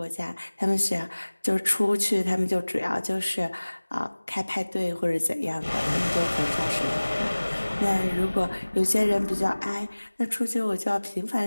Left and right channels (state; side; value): inverted; both; correlation -1.00